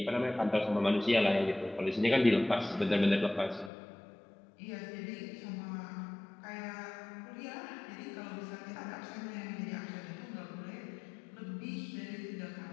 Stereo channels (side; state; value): right; drops out; at 3.7 s